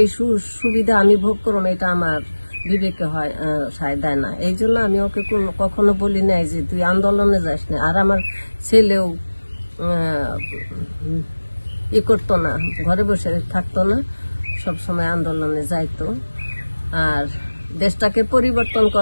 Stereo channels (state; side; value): inverted; both; correlation -1.00